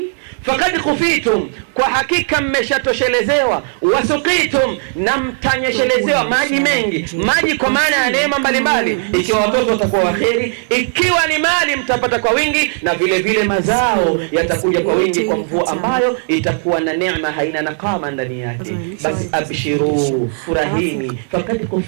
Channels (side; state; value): left; silent; digital silence